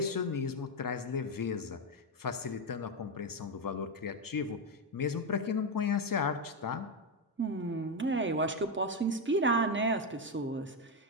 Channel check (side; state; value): both; normal; correlation 0.07